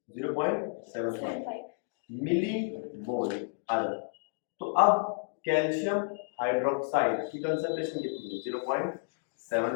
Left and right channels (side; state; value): right; silent; digital silence